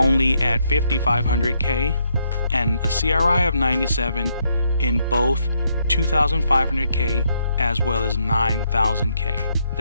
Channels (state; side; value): inverted; both; correlation -0.75